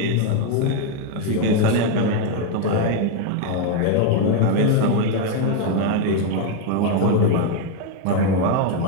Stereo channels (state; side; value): different; both; correlation 0.01